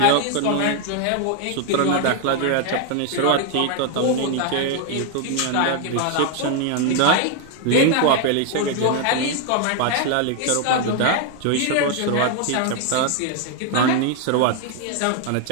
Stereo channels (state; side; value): different; both; correlation 0.00